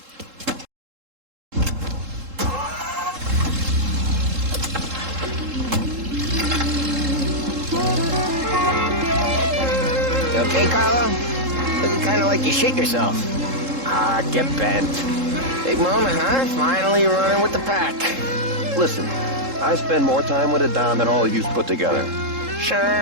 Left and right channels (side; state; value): left; late; 3.7 ms